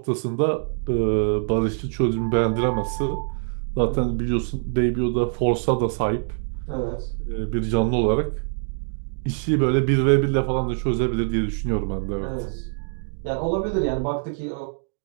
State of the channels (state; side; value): silent; left; 61 dB below the other